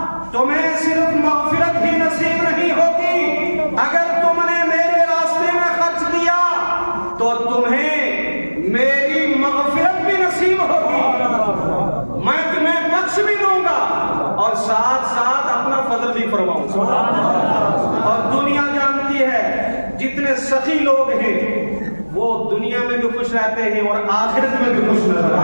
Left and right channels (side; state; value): both; inverted; correlation -1.00